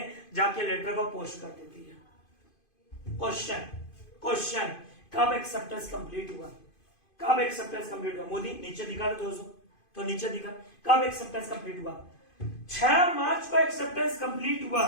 जाके लेटर को पोस्ट कर देती है। क्वेश्चन, कब एक्सेप्टेंस कंप्लीट हुआ? कब एक्सेप्टेंस कंप्लीट हुआ? मोदी नीचे दिखा दो दोस्तों, तो नीचे दिखा कब एक्सेप्टेंस कंप्लीट हुआ। 6 मार्च को एक्सेप्टेंस कंप्लीट हुआ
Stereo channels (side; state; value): right; late; 2.5 ms